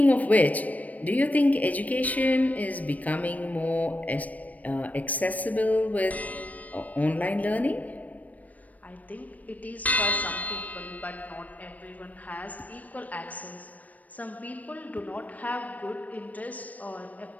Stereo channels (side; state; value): right; late; 0.073 ms